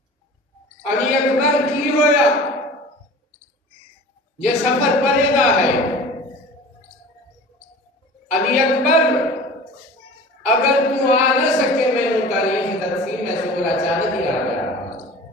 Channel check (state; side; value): normal; both; correlation 0.40